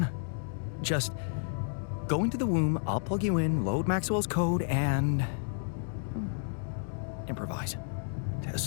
Just go into the womb, I'll plug you in, load Maxwell's code, and improvise.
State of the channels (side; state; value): right; silent; digital silence